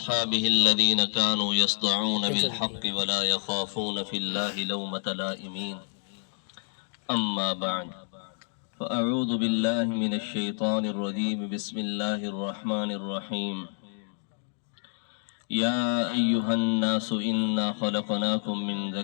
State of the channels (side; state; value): right; silent; digital silence